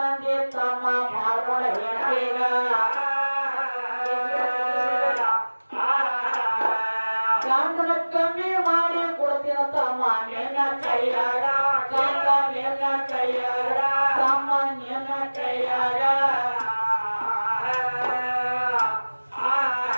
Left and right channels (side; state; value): both; inverted; correlation -1.00